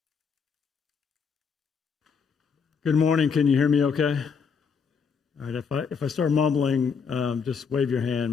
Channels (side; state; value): right; quieter; 6.0 dB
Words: Good morning. Can you hear me okay? All right, if I start mumbling, just wave your hand.